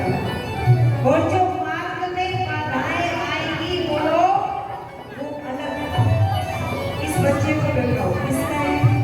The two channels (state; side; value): identical; both; correlation 1.00